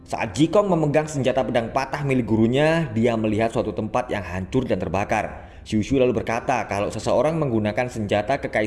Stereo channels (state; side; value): identical; both; correlation 1.00